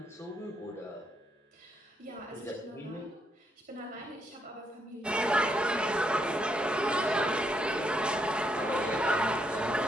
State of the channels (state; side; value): normal; both; correlation 0.76